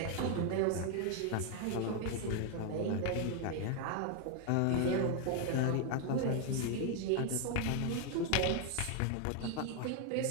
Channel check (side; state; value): both; different; correlation 0.01